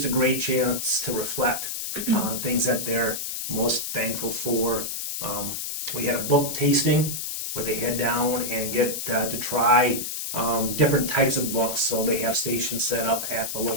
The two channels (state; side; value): noise; left; hiss, 4 dB below the sound